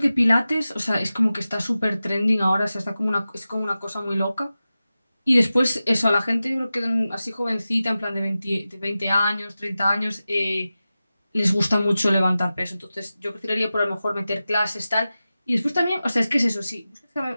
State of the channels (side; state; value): both; inverted; correlation -0.95